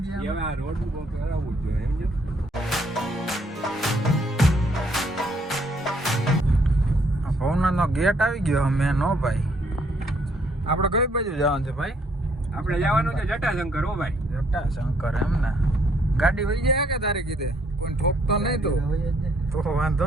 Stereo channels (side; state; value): both; normal; correlation 0.68